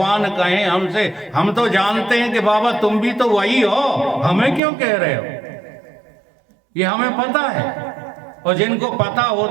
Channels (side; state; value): left; drops out; at 4.6 s